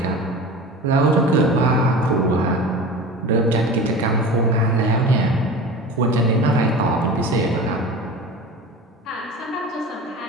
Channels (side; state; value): both; normal; correlation 0.34